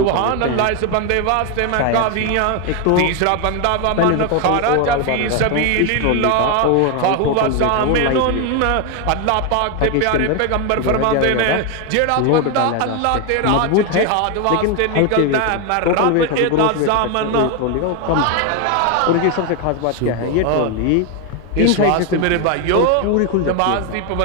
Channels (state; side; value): different; both; correlation 0.01